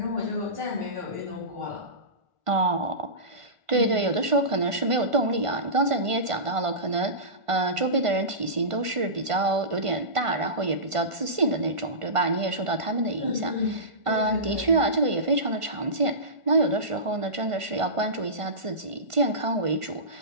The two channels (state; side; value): late; left; 1.5 ms